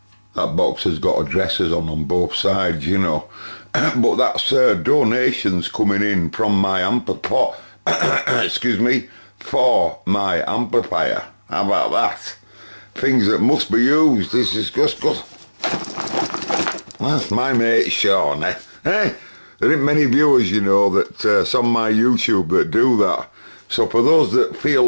box has got addresses on both sides, you know. But that's donations coming in from my amplifier. Excuse me, for my amplifier. How about that? Things that must be used. This is just good. That's my mate Sean, eh? There ain't many viewers, you know, that it's on my YouTube that do that. So for those that feel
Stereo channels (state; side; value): inverted; both; correlation -1.00